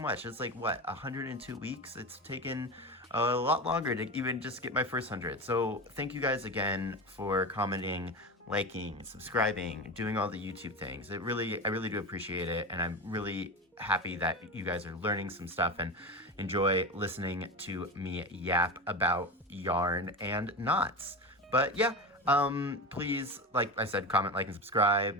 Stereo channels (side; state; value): both; normal; correlation 0.23